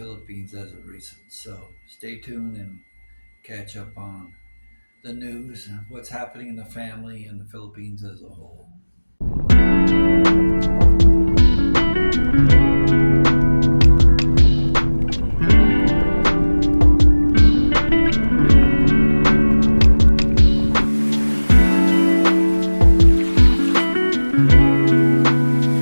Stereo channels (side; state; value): both; inverted; correlation -1.00